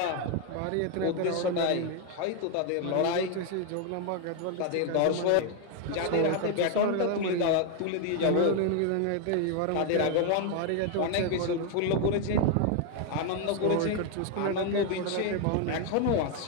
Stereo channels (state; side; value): different; both; correlation 0.01